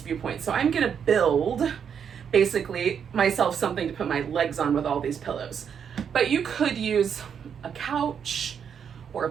viewpoint. So I'm gonna build basically myself something to put my legs on with all these pillows. But you could use a couch or a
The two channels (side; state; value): left; quieter; 7.6 dB